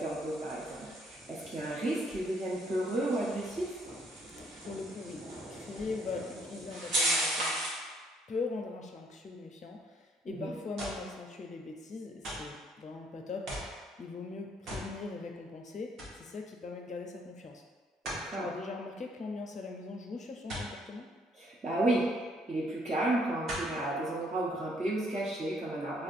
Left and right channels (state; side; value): normal; both; correlation 0.66